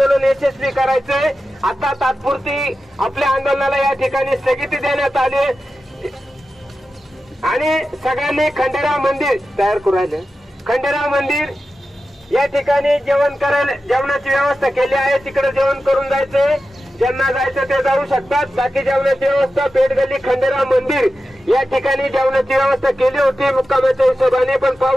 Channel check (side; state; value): both; normal; correlation 0.92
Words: यशस्वी करायचंय. आता तात्पुरती आपल्या आंदोलनाला या ठिकाणी स्थगिती देण्यात आली आणि सगळ्यांनी खंडेराव मंदिर तयार करू राहिले. खंडेराव मंदिर या ठिकाणी जेवणाची व्यवस्था केली आहे. तिकडे जेवण करून जायचंय. ज्यांना जायचं ते जाऊ शकतात. बाकी जेवणाची व्यवस्था पेठगल्ली खंडेराव मंदिर या ठिकाणी जेवणाची व्यवस्था केली होती मुक्कामाच्या हिशोबाने, पण